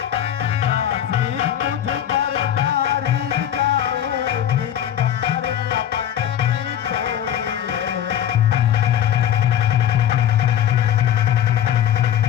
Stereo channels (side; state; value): right; quieter; 10.4 dB